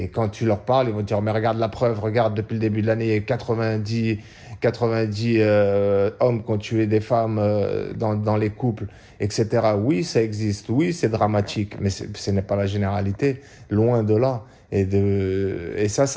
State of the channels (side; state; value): both; identical; correlation 1.00